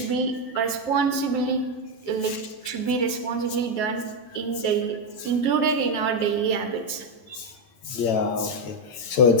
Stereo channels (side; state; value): right; late; 8.9 ms